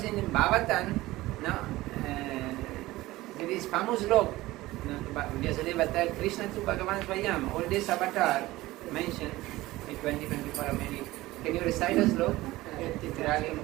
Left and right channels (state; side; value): quieter; left; 18.1 dB